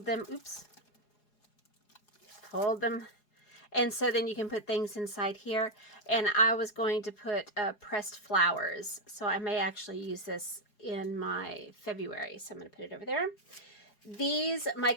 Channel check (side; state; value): right; late; 4.8 ms